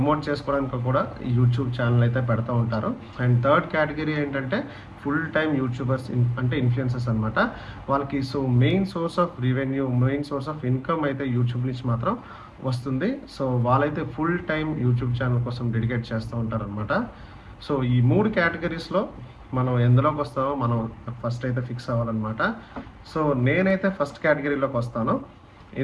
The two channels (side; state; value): both; identical; correlation 1.00